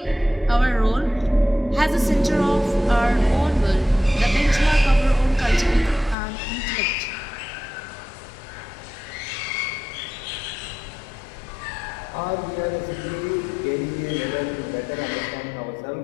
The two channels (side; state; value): right; drops out; at 6.2 s